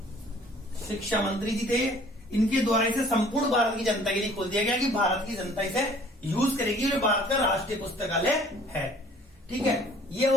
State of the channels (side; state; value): both; normal; correlation 0.54